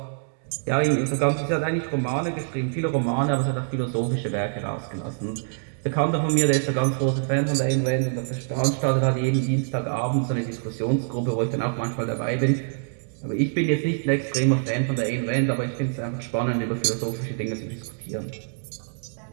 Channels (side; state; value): left; silent; digital silence